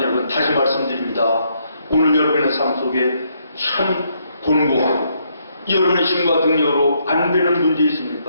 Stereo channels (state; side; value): inverted; both; correlation -0.73